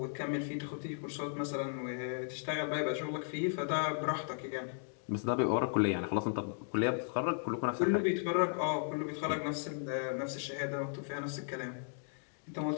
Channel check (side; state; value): right; silent; digital silence